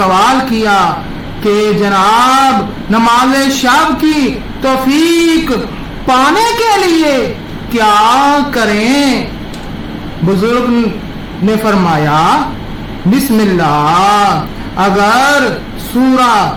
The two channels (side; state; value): both; identical; correlation 1.00